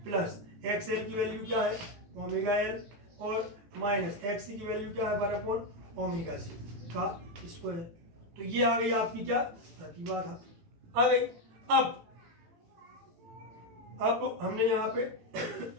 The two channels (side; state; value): left; late; 18 ms